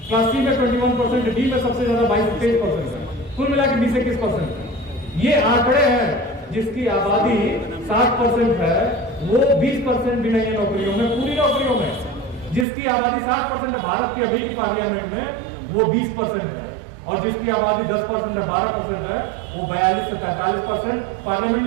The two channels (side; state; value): left; drops out; at 12.7 s